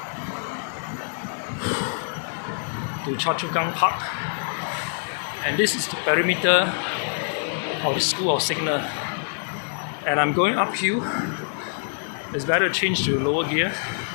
to Choa Chu Kang Park. And this is the perimeter of the School of Signal. And I'm going uphill. It's better to change to lower gear.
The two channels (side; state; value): right; silent; digital silence